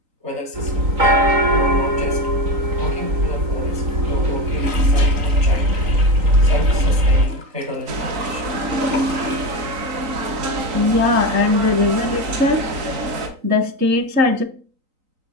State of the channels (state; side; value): late; left; 3.9 ms